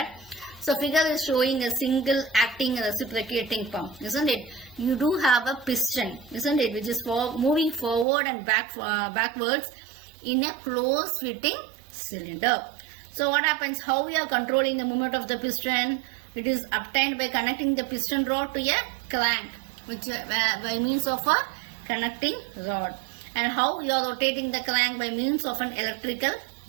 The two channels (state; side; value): drops out; left; at 8.1 s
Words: So figure is showing a single acting reciprocating pump, isn't it? You do have a piston, isn't it, which is moving forward and backwards in a closed fitting cylinder. So what happens? How we are controlling the movement of the piston? It is obtained by connecting the piston rod to a crank, which by means of a connecting rod. And how you are rotating the crank? By means of an electrical